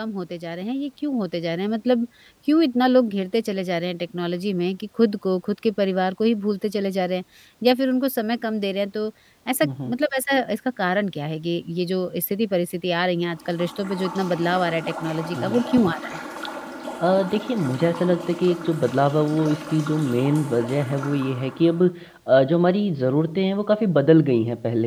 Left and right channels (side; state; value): both; identical; correlation 1.00